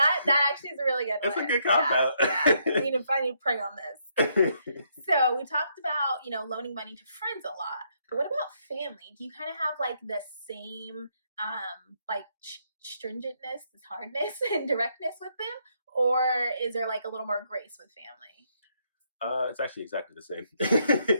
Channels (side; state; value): both; inverted; correlation -0.74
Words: actually is a really good one. That's a good cop out. I need to pray on this. So we talked about, loaning money to friends a lot. But what about family? Do you kind of have like the same stringentness, this hardness and directness with them? Or is there like a little more grace with family? It's actually exactly the same.